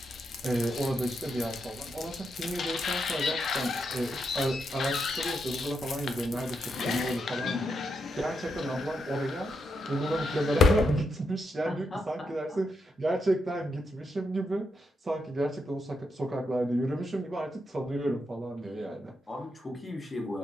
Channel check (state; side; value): normal; both; correlation 0.82